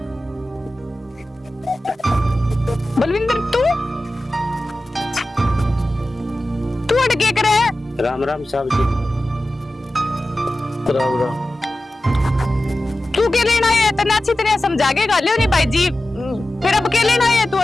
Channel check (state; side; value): normal; both; correlation 0.94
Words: बलविंदर तू अटके करे? राम राम साहब जी। राम राम। तू के लेना है तने अच्छी तरह समझा के गालियो नहीं भाई जी, फिर अब के लेना है